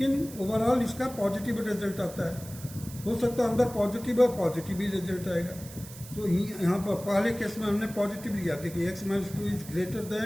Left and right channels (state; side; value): noise; right; hiss, 16 dB below the sound